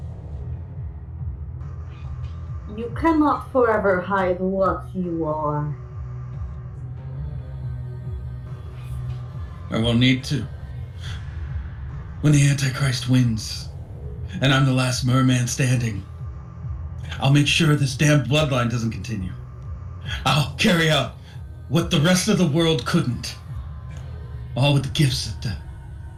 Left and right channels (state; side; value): identical; both; correlation 1.00